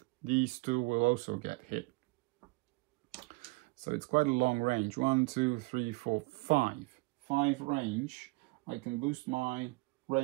these 2 will also get hit. So it's quite a long range. 1, 2, 3, 4, 5. 5 range. I can boost my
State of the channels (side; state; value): left; quieter; 25.7 dB